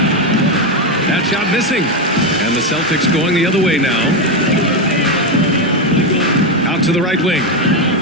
That shot missing. And the Celtics going the other way now. Out to the right wing.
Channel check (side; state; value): both; normal; correlation 0.08